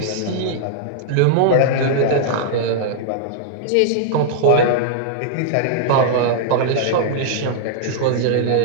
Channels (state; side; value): different; both; correlation -0.01